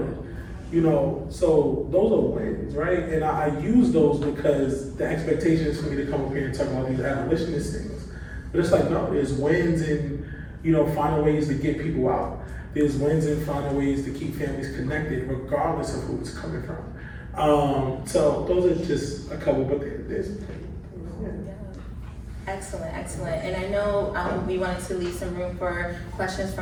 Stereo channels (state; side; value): identical; both; correlation 1.00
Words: You know, so those are wins, right? And I use those because the expectation is for me to come up here and talk about these abolitionist things. But it's like, no, there's wins in, you know, finding ways to get people out. There's wins in finding ways to keep families connected, regardless of who it's coming from. So those are just a couple, but there's Excellent, excellent. And I know we wanted to leave some room for questions